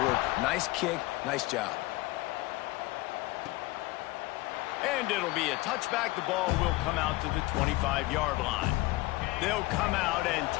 Nice kick, nice job. And it'll be a touchback. The ball will come out to the 25-yard line. They'll come out and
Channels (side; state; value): right; quieter; 20.3 dB